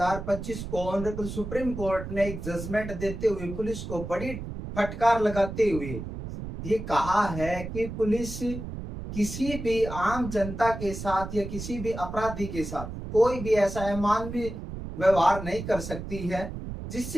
को honourable supreme court ने एक जजमेंट देते हुए पुलिस को बड़ी फटकार लगाते हुए ये कहा है कि पुलिस किसी भी आम जनता के साथ या किसी भी अपराधी के साथ कोई भी ऐसा अमानवीय व्यवहार नहीं कर सकती है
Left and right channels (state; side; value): noise; right; rumble, 8 dB below the sound